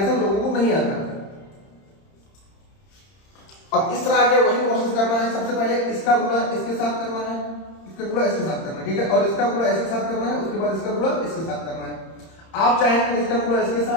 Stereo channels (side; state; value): right; late; 30 ms